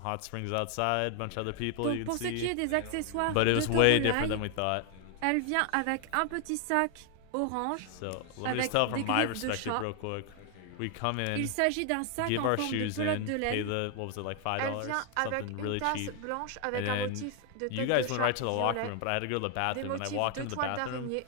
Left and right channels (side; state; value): both; different; correlation 0.00